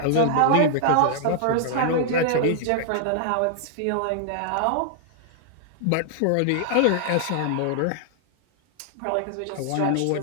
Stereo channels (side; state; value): both; different; correlation -0.01